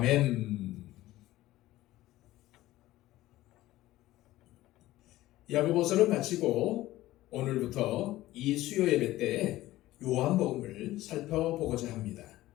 야고보서를 마치고 오늘부터 이 수요 예배 때 요한복음을 살펴보고자 합니다.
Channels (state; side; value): quieter; right; 16.3 dB